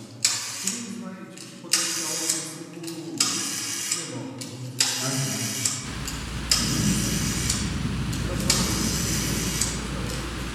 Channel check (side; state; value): both; identical; correlation 1.00